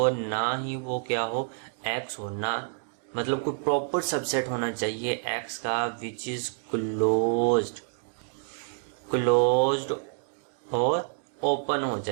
ना ही वो क्या हो एक्स हो, ना मतलब कोई प्रॉपर सबसेट होना चाहिए एक्स का विच इज क्लोज्ड और ओपन हो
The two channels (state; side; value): silent; left; digital silence